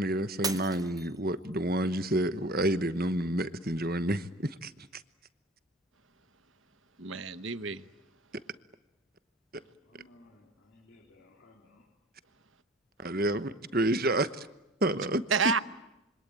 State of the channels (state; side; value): normal; both; correlation 0.41